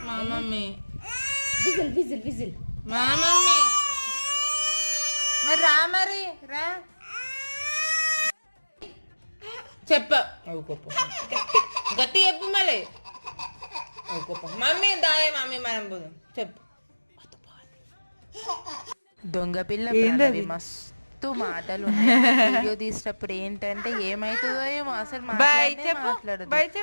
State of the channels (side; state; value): both; inverted; correlation -1.00